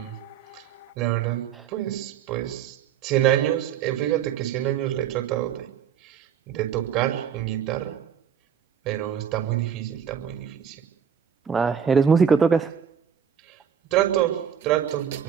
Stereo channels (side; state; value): left; quieter; 8.3 dB